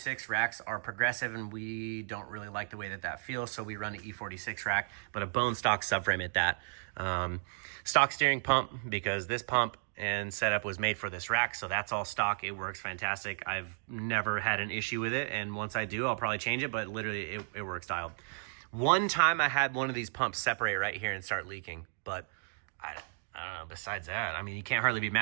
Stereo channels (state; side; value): silent; left; digital silence